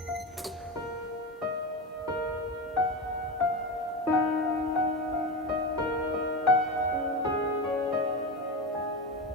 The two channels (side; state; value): both; normal; correlation 0.20